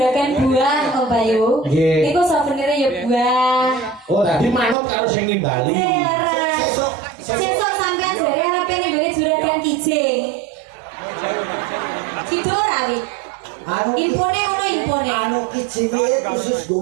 buah Om Bayu. Nggih. Niku souvenir ya buah. Oh, tadi manut karo sing nimbali. Sesuk sampean jare arepe nembeli juragan kijing. Sido ora wi? Anu Impone ngono impone. anu kijinge khusus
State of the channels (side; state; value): left; drops out; at 4.8 s